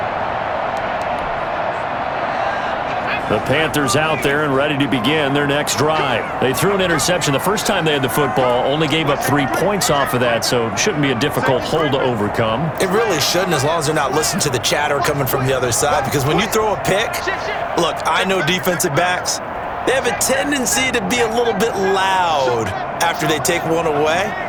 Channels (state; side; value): identical; both; correlation 1.00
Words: The Panthers out there and ready to begin their next drive. They threw an interception the first time they had the football, only gave up 3 points off of that, so it shouldn't be a difficult hole to overcome. It really shouldn't, as long as they're not listening to the chatter coming from the other side, because when you throw a pick, look, I know defensive backs, they have a tendency to be a little bit loud after they take one away,